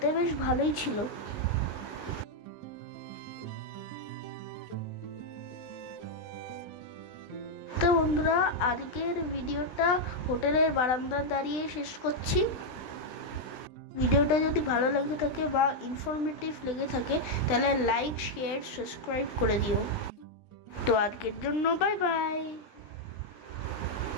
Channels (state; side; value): late; right; 19 ms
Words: বেশ ভালোই ছিল। তো বন্ধুরা, আজকের ভিডিওটা হোটেলের বারান্দায় দাঁড়িয়ে শেষ করছি। ভিডিওটা যদি ভালো লেগে থাকে বা ইনফরমেটিভ লেগে থাকে তাহলে লাইক, শেয়ার, সাবস্ক্রাইব করে দিও। তো আজকের জন্য বাই বাই।